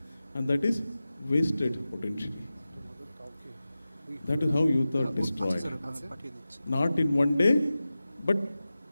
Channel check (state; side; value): inverted; both; correlation -0.95